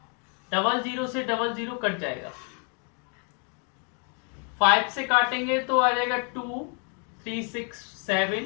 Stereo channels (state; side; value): quieter; right; 39.8 dB